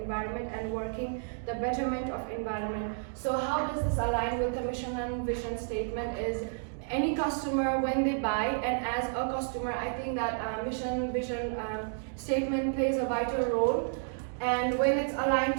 and working the betterment of environment. So how does this align with the mission and vision statement is any customer when they buy, and as a customer I think that mission vision statement plays a vital role, and when it's aligned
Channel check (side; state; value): left; silent; digital silence